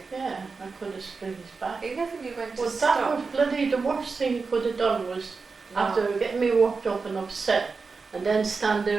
Yeah, I could have split his back. He never knew when to Well, stop. that was bloody the worst thing he could have done was No. after getting me worked up and upset and then stand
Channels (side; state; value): left; quieter; 4.6 dB